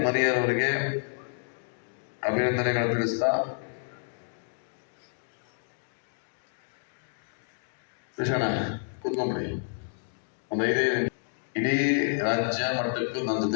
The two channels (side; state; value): right; silent; digital silence